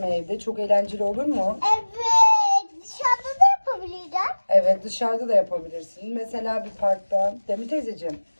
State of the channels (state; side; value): inverted; both; correlation -1.00